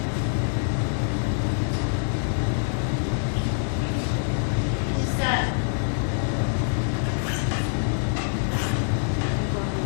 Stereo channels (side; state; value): right; silent; digital silence